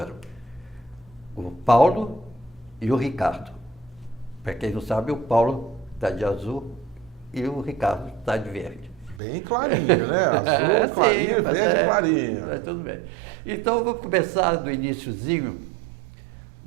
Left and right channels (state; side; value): drops out; left; at 9.2 s